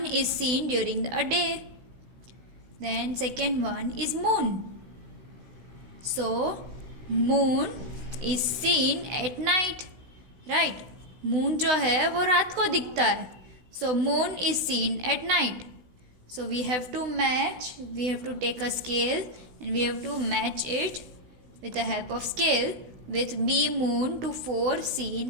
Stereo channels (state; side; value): late; left; 16 ms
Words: is seen during a day. Then second one is moon. So moon is seen at night, right? Moon जो है वो रात को दिखता है. So moon is seen at night. So we have to match, we have to take a scale and we have to match it with the help of scale with B moon to 4